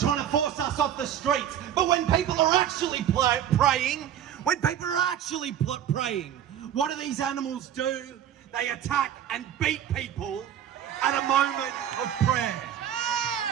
to force us off the streets. But when people are actually praying, what do these animals do? They attack and beat people at a moment of prayer.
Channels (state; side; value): quieter; left; 10.1 dB